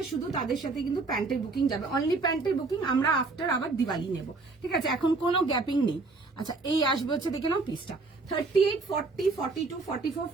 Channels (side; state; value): left; quieter; 3.8 dB